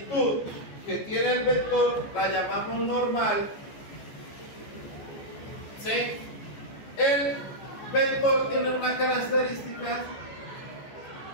que tiene el vector la llamamos normal, ¿sí? El vector tiene una característica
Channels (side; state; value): right; late; 14 ms